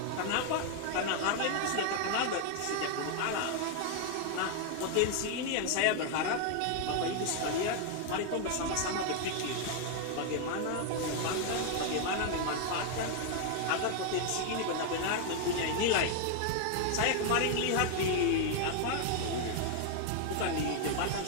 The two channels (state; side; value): different; both; correlation 0.00